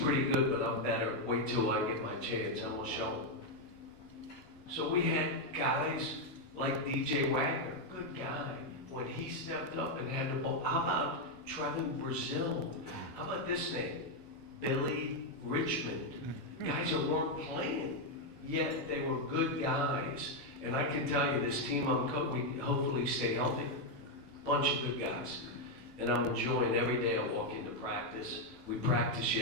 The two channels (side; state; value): both; normal; correlation 0.02